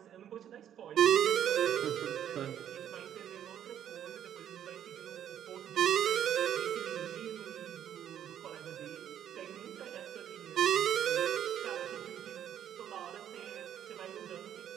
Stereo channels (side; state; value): left; quieter; 10.1 dB